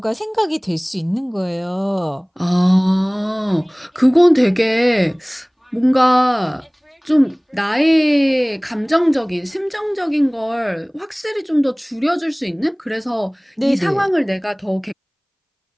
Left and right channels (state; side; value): identical; both; correlation 1.00